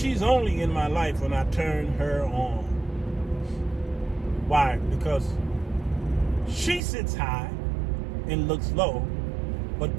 only in my life when I turn her on. Why? Because she sits high and looks low, but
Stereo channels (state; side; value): drops out; left; at 6.8 s